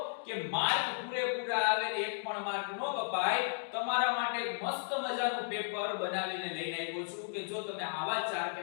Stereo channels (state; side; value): silent; right; digital silence